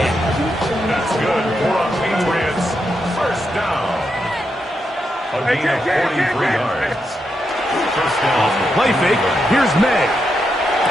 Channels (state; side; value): normal; both; correlation 0.84